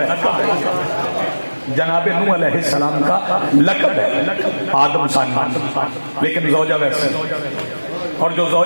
جناب نوح علیہ السلام کا لقب ہے آدم ثانی، لیکن زوجہ ویسے، اور جو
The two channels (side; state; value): both; inverted; correlation -1.00